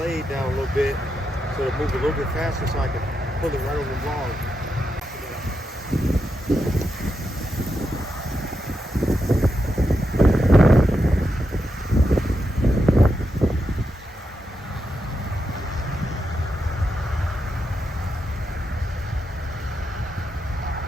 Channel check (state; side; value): normal; both; correlation 0.85